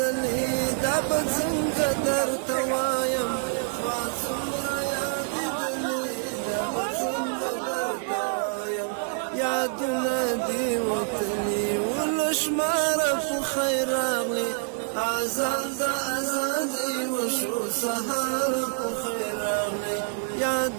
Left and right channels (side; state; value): left; silent; digital silence